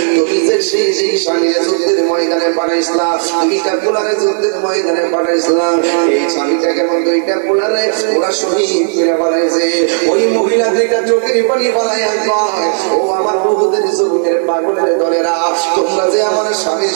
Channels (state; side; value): silent; left; digital silence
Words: তুমি যে সেই স্বামীর যুদ্ধের ময়দানে পাঠাইছিলা দুইটা পোলারে যুদ্ধের ময়দানে পাঠাইছিলা এই স্বামীটাকে দুইটা পোলারে ওরা শহীদ করে বানাইছে ওই মহিলা দুইটা চোখের পানি বানাইয়া কয় ও আমার বহুদের জমিনের পাগলের দলেরা তোমরা যে আমার স্বামীর